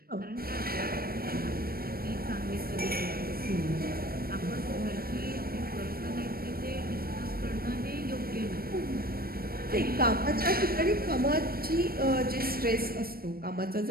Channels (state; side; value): late; left; 0.44 ms